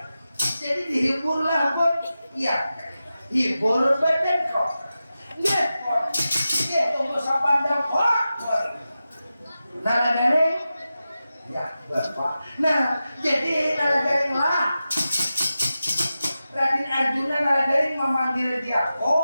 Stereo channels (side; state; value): both; inverted; correlation -0.93